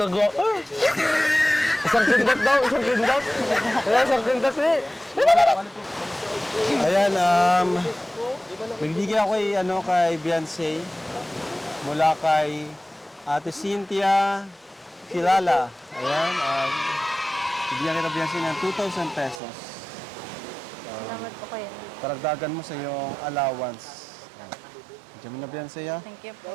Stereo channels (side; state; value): left; drops out; at 19.4 s